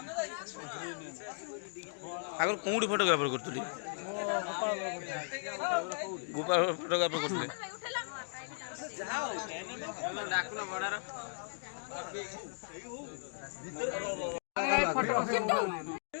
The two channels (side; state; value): right; silent; digital silence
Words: आगर कोडी फोटोग्राफर करतली गोपाल फोटोग्राफर करतले